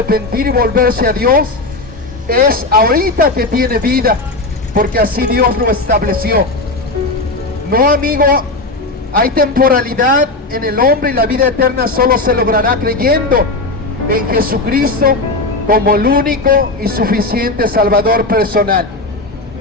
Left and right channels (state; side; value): quieter; right; 3.0 dB